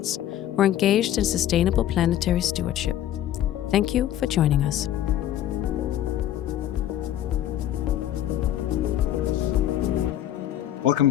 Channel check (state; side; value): quieter; right; 12.1 dB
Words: who are engaged in sustainable planetary stewardship. Thank you for joining us. Welcome